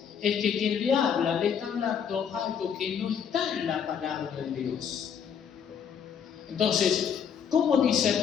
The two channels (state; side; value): quieter; right; 7.6 dB